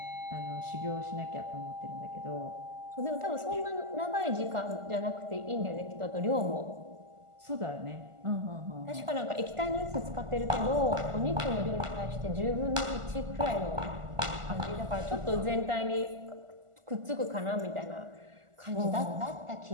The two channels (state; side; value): late; left; 1.4 ms